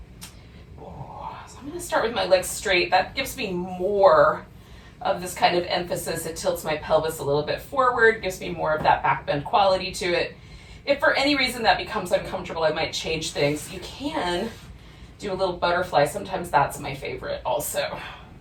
So I'm going to start with my legs straight. That gives me more of this kind of emphasis. It tilts my pelvis a little bit forward, gives me more of that back bend quality to it. If for any reason that becomes uncomfortable, I might change things. You can do a little butterfly. Sometimes that's my favorite also.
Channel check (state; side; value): identical; both; correlation 1.00